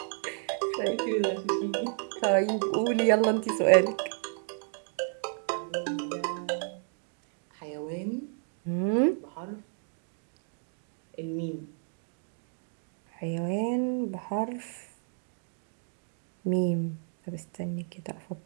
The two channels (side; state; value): left; silent; 57 dB below the other